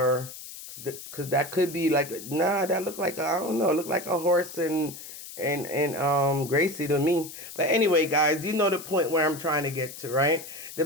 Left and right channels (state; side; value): noise; left; hiss, 13 dB below the sound